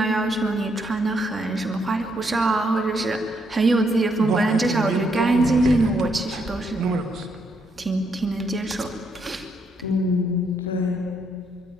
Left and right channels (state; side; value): normal; both; correlation 0.75